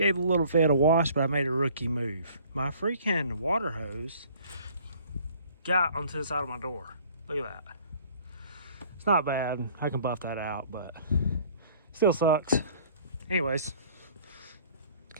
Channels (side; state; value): both; inverted; correlation -0.54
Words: the little Fed a wash, but I made a rookie move. My freaking water hose got onto the side of my door. Look at that. It's not bad. I can buff that out, but still sucks. Anyways,